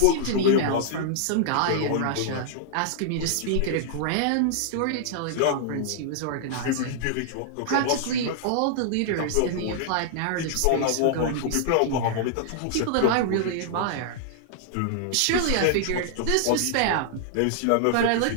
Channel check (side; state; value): both; different; correlation -0.01